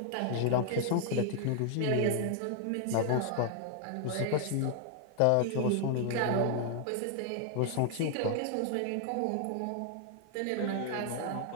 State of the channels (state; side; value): different; both; correlation 0.00